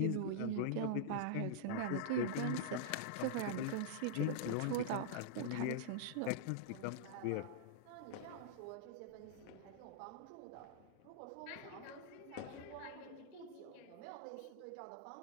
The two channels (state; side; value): different; both; correlation -0.02